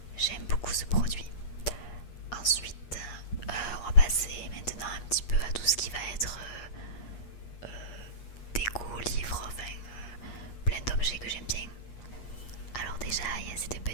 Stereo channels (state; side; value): late; right; 8.3 ms